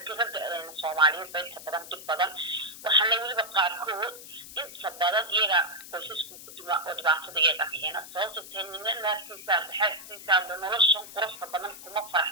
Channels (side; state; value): left; noise; hiss, 14 dB below the sound